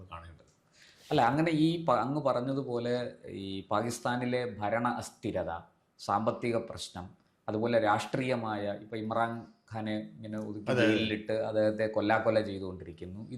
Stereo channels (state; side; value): identical; both; correlation 1.00